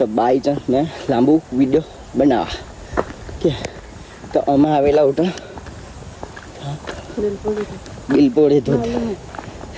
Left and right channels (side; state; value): both; identical; correlation 1.00